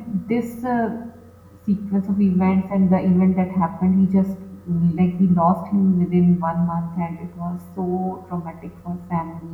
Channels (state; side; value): identical; both; correlation 1.00